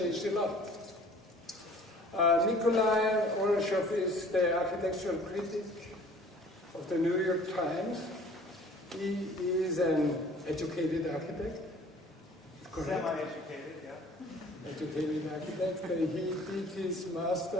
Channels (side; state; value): both; normal; correlation 0.50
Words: a lot. Nicolai Ouroussoff is the architectural critic of the New York Times. He is an educated architect. Semi-educated, yeah. Educated architect. He did his